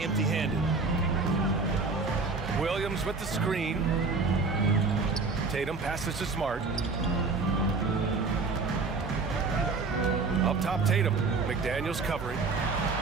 Williams with the screen. Tatum passes to Smart. Up top, Tatum. McDaniels covering.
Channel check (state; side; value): quieter; left; 4.2 dB